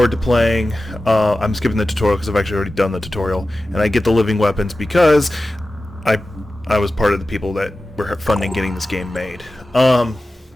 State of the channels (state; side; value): normal; both; correlation 0.94